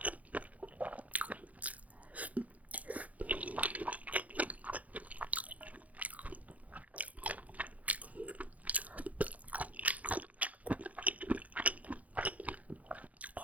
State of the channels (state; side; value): late; left; 0.071 ms